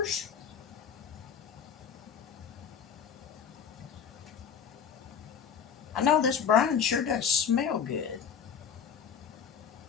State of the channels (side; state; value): right; quieter; 7.3 dB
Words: I know this brine sure does smell good.